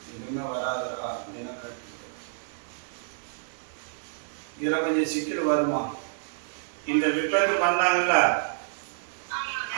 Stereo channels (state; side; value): silent; left; digital silence